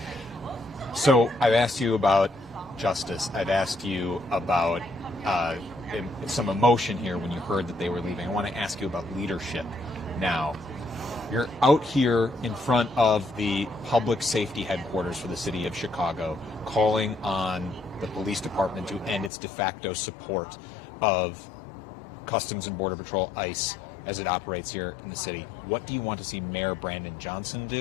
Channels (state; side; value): drops out; right; at 19.3 s